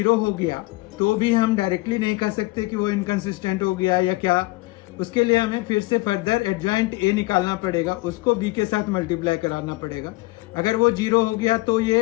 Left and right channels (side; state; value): right; quieter; 21.7 dB